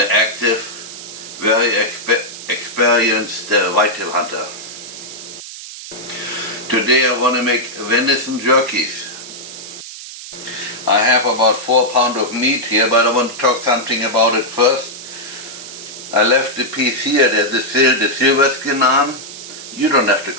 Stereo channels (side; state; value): right; noise; hiss, 12 dB below the sound